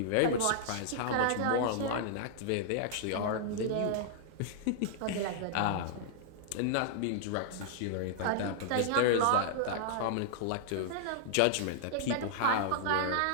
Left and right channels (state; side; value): different; both; correlation -0.01